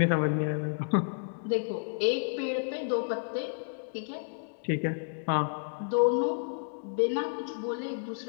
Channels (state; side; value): silent; right; digital silence